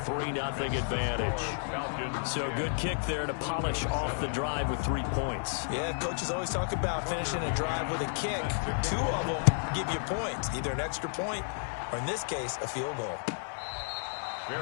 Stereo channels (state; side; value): silent; right; 57 dB below the other